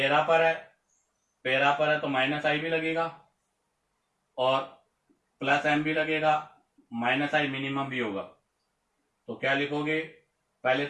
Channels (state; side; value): identical; both; correlation 1.00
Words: पर है, पैरा पर है तो माइनस आई भी लगेगा और प्लस एम भी लगेगा, माइनस आई मिनिमम भी होगा। तो क्या लिखोगे, पहले